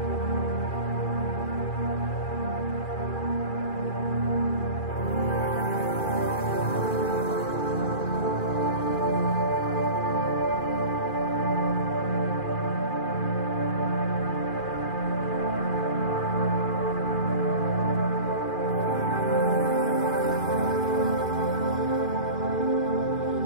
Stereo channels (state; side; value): late; right; 2.4 ms